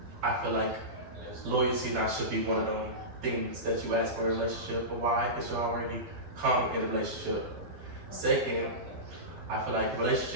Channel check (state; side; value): late; left; 12 ms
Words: I feel like loyalty not should be one of them things that you ask for a relationship. But why? Because you already come in a relationship. Second, I feel like